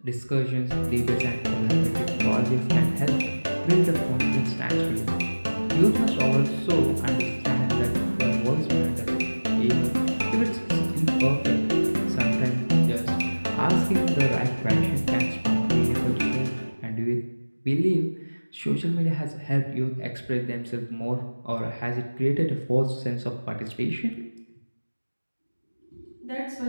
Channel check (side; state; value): both; inverted; correlation -1.00